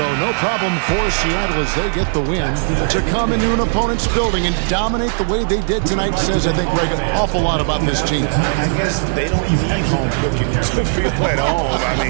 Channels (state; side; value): silent; left; digital silence